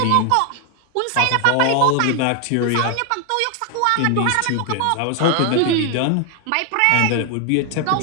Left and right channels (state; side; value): different; both; correlation 0.00